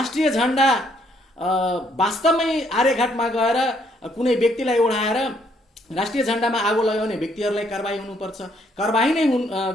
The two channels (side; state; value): both; normal; correlation 0.69